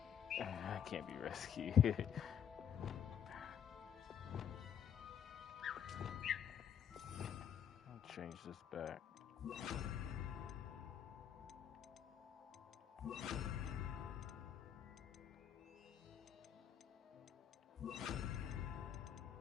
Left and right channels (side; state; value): right; quieter; 8.7 dB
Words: I can't be rescued. I'll change this back.